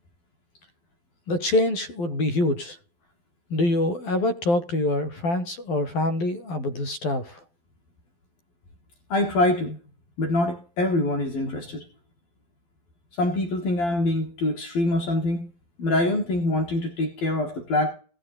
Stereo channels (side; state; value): right; late; 12 ms